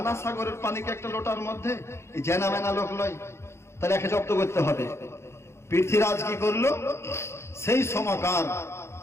সাগরের পানিকে একটা লোটার মধ্যে জেনা মেনা লোক লয়, তাহলে একে জব্দ করতে হবে। পৃথ্বীরাজ কি করলো, সেই সময়কার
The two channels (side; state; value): right; late; 0.13 ms